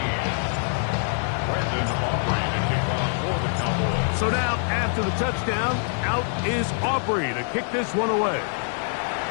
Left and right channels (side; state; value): right; silent; 62 dB below the other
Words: Brandon Aubrey to kick off for the Cowboys. So now, after the touchdown, out is Aubrey to kick this one away.